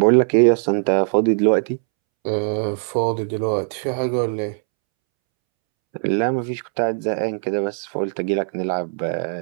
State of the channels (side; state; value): left; silent; 65 dB below the other